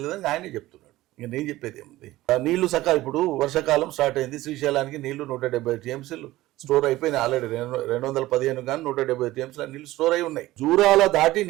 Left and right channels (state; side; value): quieter; left; 17.0 dB